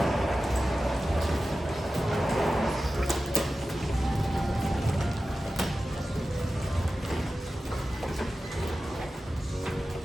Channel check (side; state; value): both; normal; correlation 0.94